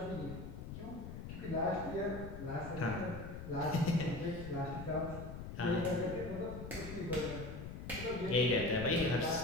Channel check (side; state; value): left; noise; rumble, 9 dB below the sound